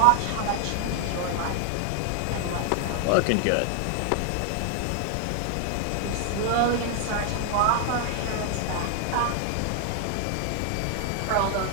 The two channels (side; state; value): both; different; correlation 0.00